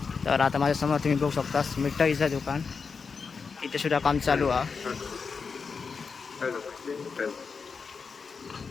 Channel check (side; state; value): right; quieter; 5.3 dB